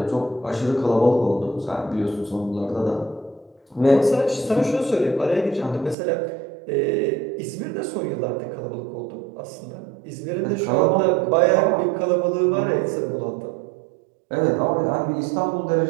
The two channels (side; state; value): left; drops out; at 6.0 s